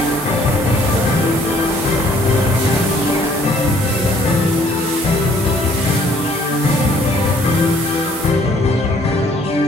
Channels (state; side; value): normal; both; correlation 0.60